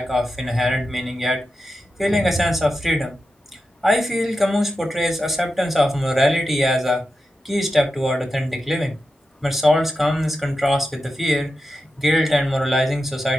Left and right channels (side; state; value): both; normal; correlation 0.90